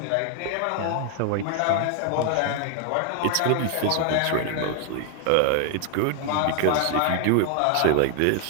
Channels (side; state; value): both; different; correlation 0.00